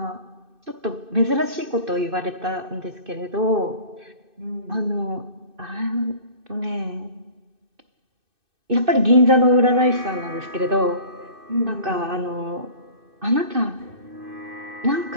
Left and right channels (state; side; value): late; left; 2.6 ms